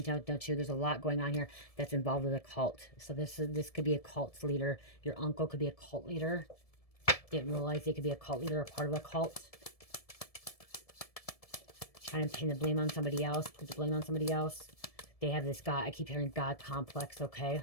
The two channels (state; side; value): late; right; 1.7 ms